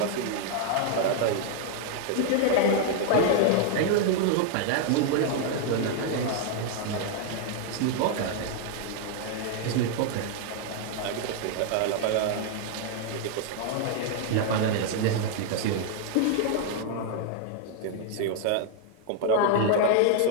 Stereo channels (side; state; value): both; different; correlation 0.00